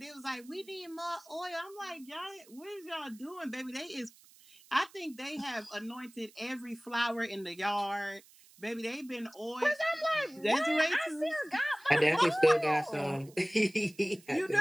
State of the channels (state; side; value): noise; right; hiss, 25 dB below the sound